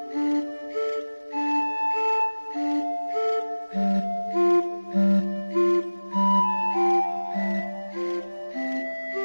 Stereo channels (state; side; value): inverted; both; correlation -1.00